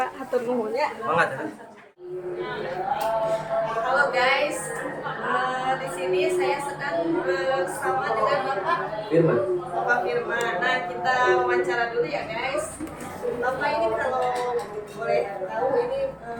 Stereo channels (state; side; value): identical; both; correlation 1.00